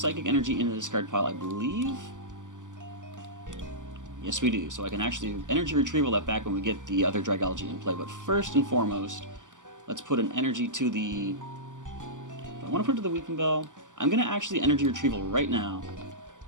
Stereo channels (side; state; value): left; late; 0.87 ms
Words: Energy in the discard pile, I believe. Yes, we do. So I can actually energy retrieval that back when we get the other Dragalge in play. But first and foremost, let's put an energy to the... If I want to put it to the Weepinbell, I'm going to actually energy retrieval right now.